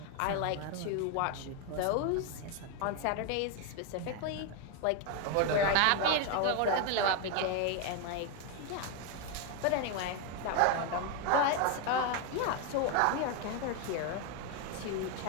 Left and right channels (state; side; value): different; both; correlation 0.01